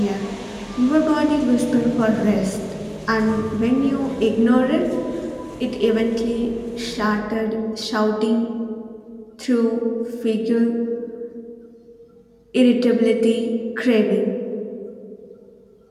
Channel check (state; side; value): identical; both; correlation 1.00